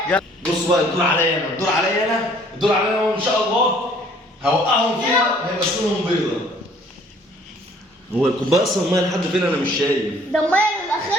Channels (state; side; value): normal; both; correlation 0.58